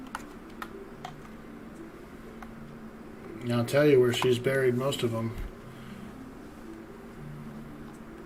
And I'll tell you where she's buried most of them.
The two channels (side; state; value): both; identical; correlation 1.00